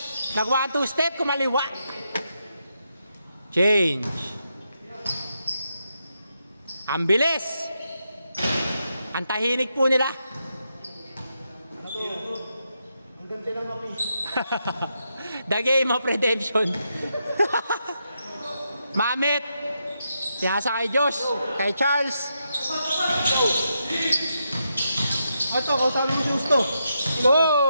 Nag 1-2 step, kumaliwa. Change. Ang bilis. Ang tahinig po nila. The game of redemption. Mamit. Pinasa kay Josh. Kay Charles. Ito, kausapin mo si Justo.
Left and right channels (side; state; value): both; inverted; correlation -0.83